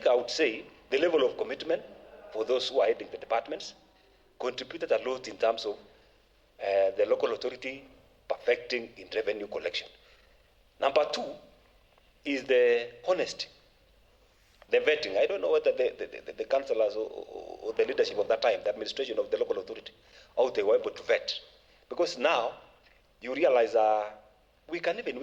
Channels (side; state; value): both; identical; correlation 1.00